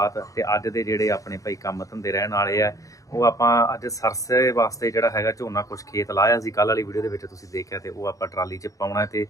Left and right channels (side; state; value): right; late; 0.16 ms